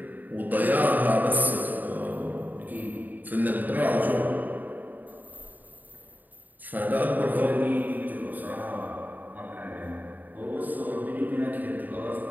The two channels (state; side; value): late; left; 0.085 ms